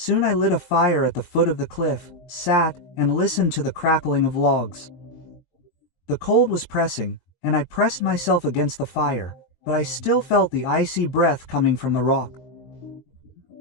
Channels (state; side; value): late; right; 21 ms